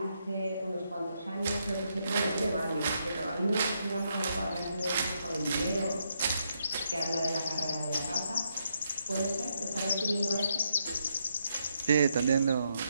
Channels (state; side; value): inverted; both; correlation -0.78